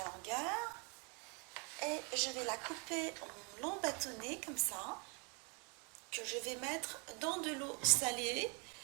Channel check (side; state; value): left; quieter; 33.9 dB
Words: longueur. Et je vais la couper en longs bâtonnets comme ça, que je vais mettre dans de l'eau salée